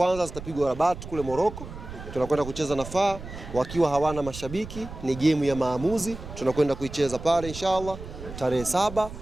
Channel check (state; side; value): noise; right; rumble, 12 dB below the sound